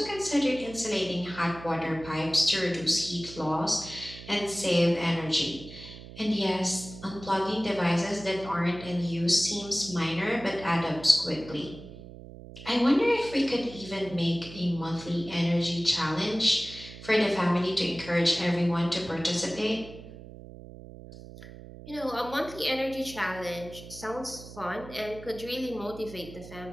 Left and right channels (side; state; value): right; noise; hum, 15 dB below the sound